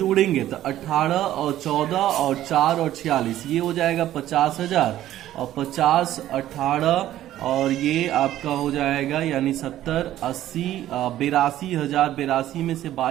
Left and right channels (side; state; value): left; quieter; 13.2 dB